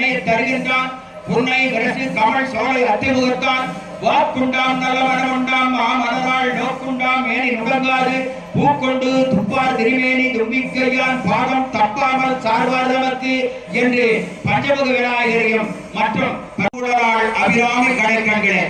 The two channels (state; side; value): identical; both; correlation 1.00